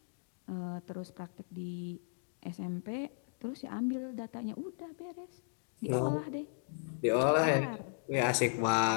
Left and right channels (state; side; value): silent; right; digital silence